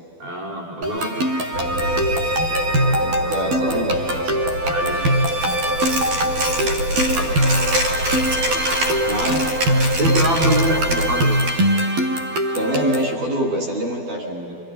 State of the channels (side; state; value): left; late; 12 ms